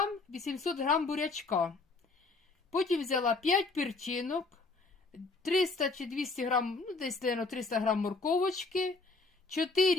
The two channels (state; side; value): quieter; right; 3.7 dB